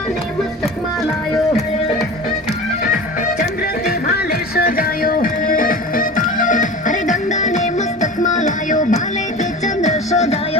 મસ્તકમાં લાયો, ચંદ્રથી ભાલે સજાયો. અરે ગંગાને મસ્તકમાં લાયો, ભાલે કે ચંદ્ર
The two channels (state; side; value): normal; both; correlation 0.34